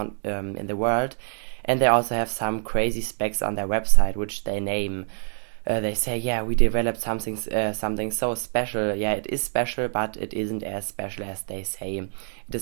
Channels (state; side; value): silent; left; 61 dB below the other